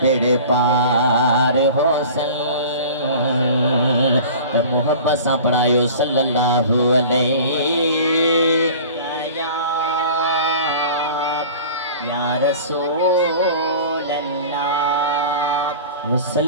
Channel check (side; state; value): both; inverted; correlation -0.40